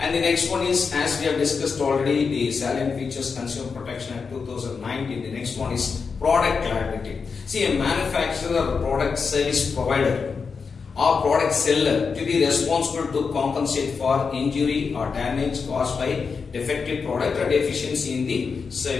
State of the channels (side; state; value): right; quieter; 5.3 dB